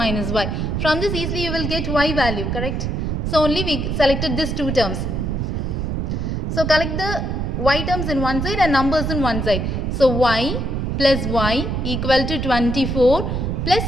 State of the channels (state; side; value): noise; right; rumble, 1 dB below the sound